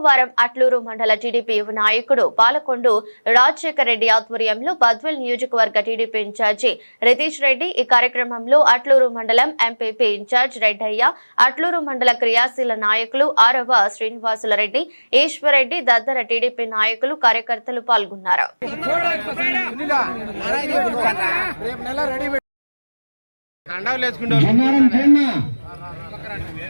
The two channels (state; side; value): inverted; both; correlation -1.00